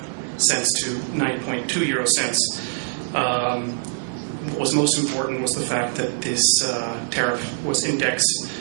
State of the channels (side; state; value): left; silent; digital silence